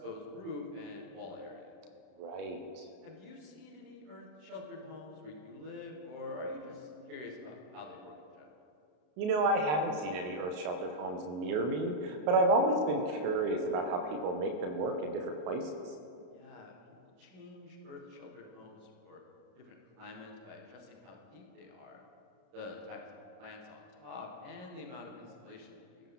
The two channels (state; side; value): late; left; 33 ms